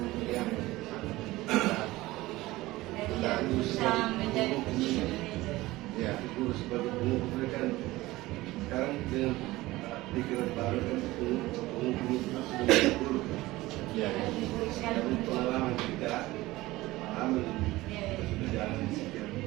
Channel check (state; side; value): quieter; left; 18.7 dB